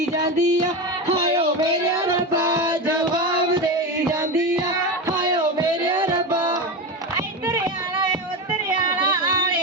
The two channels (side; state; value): both; normal; correlation 0.19